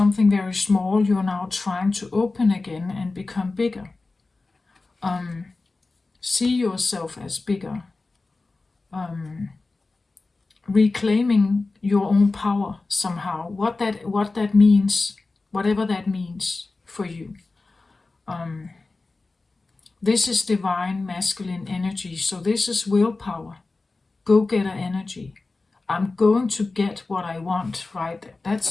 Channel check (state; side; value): quieter; right; 3.5 dB